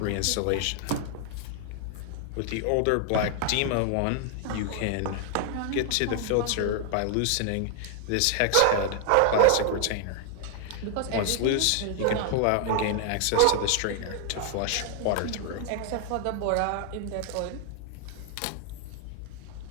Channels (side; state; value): both; different; correlation 0.00